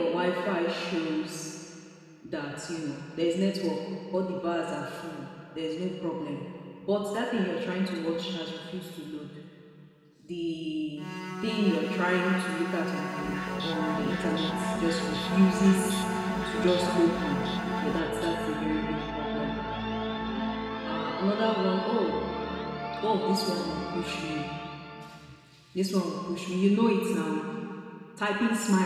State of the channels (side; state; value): both; identical; correlation 1.00